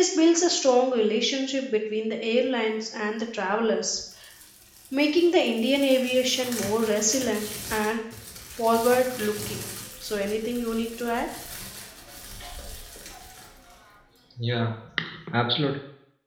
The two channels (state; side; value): identical; both; correlation 1.00